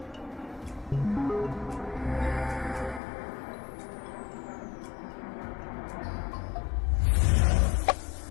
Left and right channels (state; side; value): drops out; right; at 3.0 s